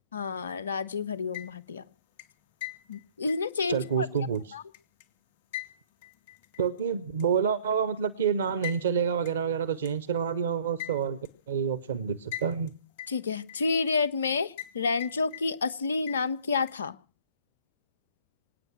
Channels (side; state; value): both; inverted; correlation -0.56